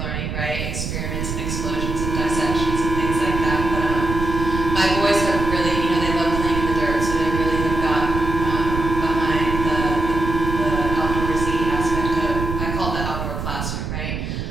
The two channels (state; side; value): noise; right; rumble, 4 dB below the sound